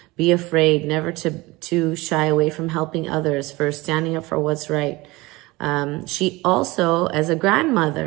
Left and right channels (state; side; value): quieter; left; 21.6 dB